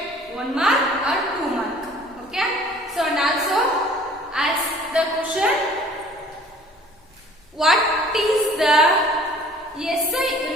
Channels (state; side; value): normal; both; correlation 0.52